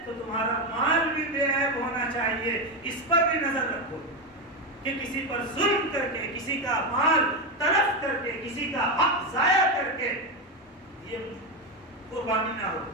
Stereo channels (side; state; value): both; normal; correlation 0.12